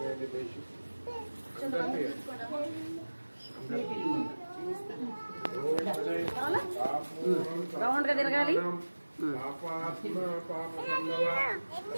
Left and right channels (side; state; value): both; inverted; correlation -1.00